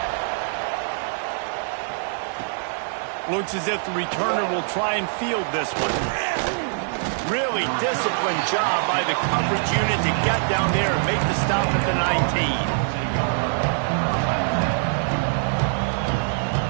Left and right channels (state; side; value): silent; left; digital silence